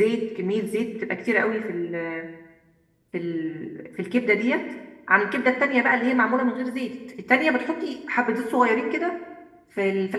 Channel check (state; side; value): identical; both; correlation 1.00